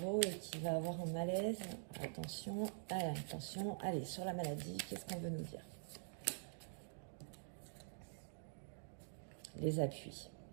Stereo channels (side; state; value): left; silent; digital silence